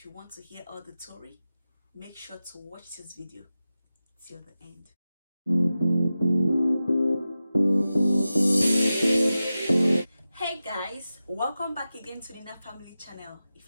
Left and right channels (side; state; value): both; inverted; correlation -0.94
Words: you want to hear all the story, make sure to watch this video till the end. Hey guys, welcome back again to the Nina Family channel. If